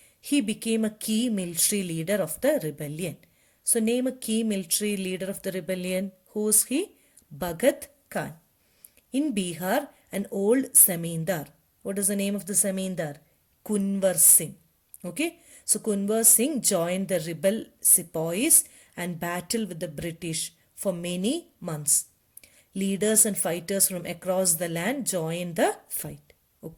He became a key military leader of the rebellion. So name a key military leader of the rebellion. Who is he? Bhagat Khan. In Bihar, an old Zamindar. What is the name of the Zamindar? Kunwar Singh. Okay. So Kunwar Singh joined the rebel sepoys and battled with the British for many months. Leaders and fighters from across the land joined the fight.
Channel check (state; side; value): identical; both; correlation 1.00